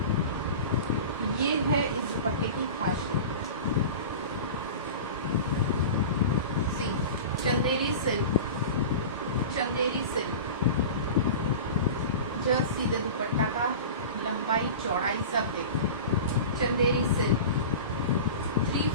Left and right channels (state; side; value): inverted; both; correlation -0.32